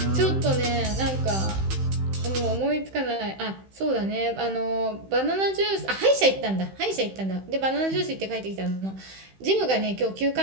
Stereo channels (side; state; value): left; late; 15 ms